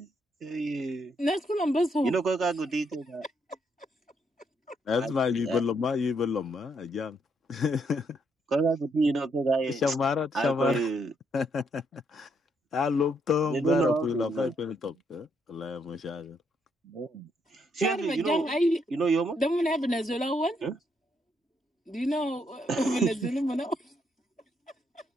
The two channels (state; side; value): normal; both; correlation 0.75